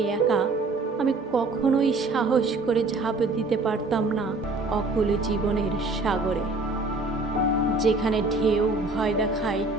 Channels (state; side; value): quieter; left; 3.3 dB